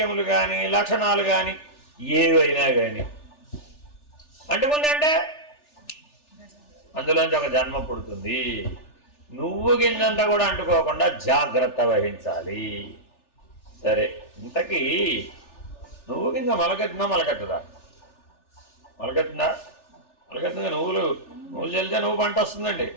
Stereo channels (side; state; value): right; late; 3.4 ms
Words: కానీ, లక్షణాలు కానీ, ఏవైనా కానీ అంటుకుందంటే అందులోంచి ఒక జన్మ పుడుతుంది. నువ్వు గింజంతా కూడా అంటుకోకుండా జాగ్రత్త వహించాలి. సరే, ఇంతకీ నువ్వు గింజ మొలకెత్తుందా మొలకెత్తదా? మొలకెత్తుందా? మొలకెత్తుందా? నువ్వులు చల్లితే నువ్వు పంట వస్తుందండి.